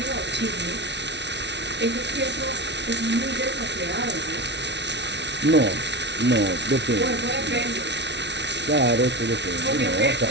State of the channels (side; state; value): left; late; 0.51 ms